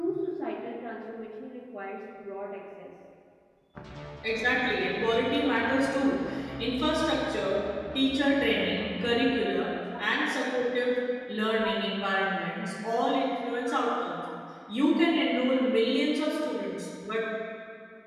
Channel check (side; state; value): both; identical; correlation 1.00